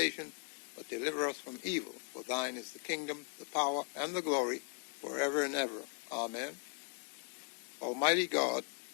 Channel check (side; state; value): right; quieter; 36.5 dB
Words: but deliver us from evil. For thine is the kingdom, the power, and the glory, forever and ever. Amen. Almighty God,